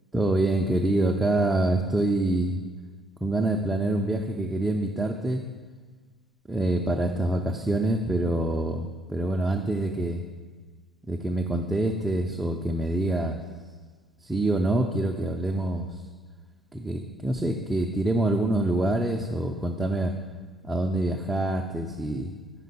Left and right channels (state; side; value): normal; both; correlation 0.74